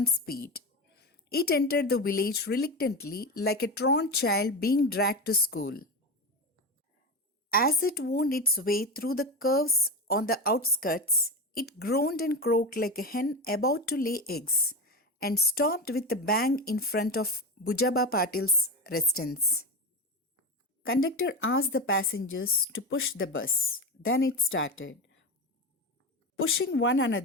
speed. It entered the village reluctantly, like a truant child being dragged to school. As it wound its way through the curves on the outskirts, it groaned and croaked like a hen about to lay eggs, and stopped with a bang in front of Bujaba Patil's residence. Conductor asked the passengers to push the bus. Then it started. Pushing one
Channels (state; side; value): normal; both; correlation 0.20